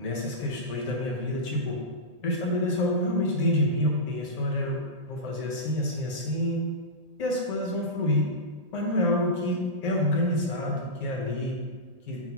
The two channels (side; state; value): left; late; 1.8 ms